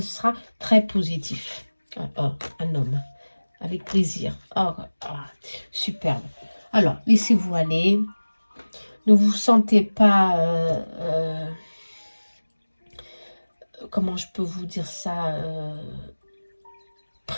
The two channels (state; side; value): inverted; both; correlation -1.00